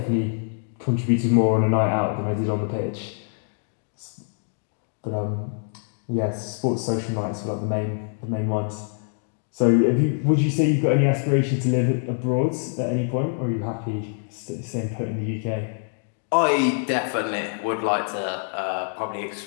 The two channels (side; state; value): right; silent; 62 dB below the other